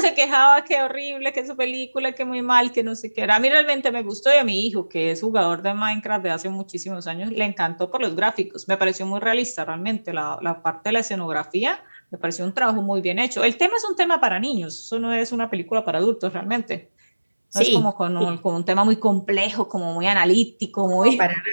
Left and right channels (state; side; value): inverted; both; correlation -1.00